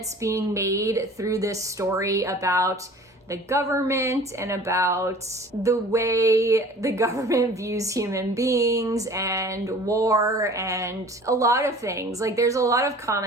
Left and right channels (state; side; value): normal; both; correlation 0.46